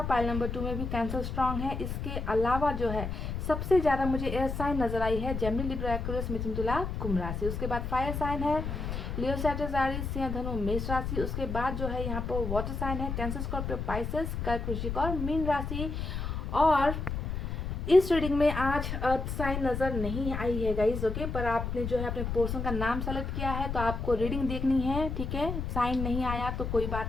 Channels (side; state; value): left; noise; rumble, 4 dB below the sound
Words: पाइल नंबर 2 में भी कैंसर स्ट्रांग है। इसके अलावा जो है सबसे ज़्यादा मुझे एयर साइन नजर आई है, जेमिनी, लिब्रा, एक्वेरियस, मिथुन, तुला, कुंभ राशि। उसके बाद फायर साइन है लियो, सैजिटेरियस, एरीज, सिंह, धनु, मेष राशि। उसके बाद जो है यहाँ पर वाटर साइन है कैंसर, स्कॉर्पियो, पाइसेस, कर्क, वृश्चिक और मीन राशि। और इस रीडिंग में आज अर्थ साइन नज़र नहीं आई है गाइज। ओके, पर आपने जो है अपने पोर्शन का नाम सेलेक्ट किया है तो आपको रीडिंग देखनी है, ठीक है। साइन नहीं आया तो कोई